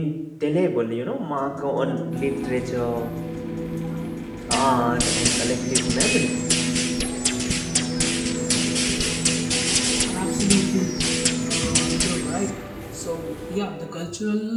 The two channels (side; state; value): both; identical; correlation 1.00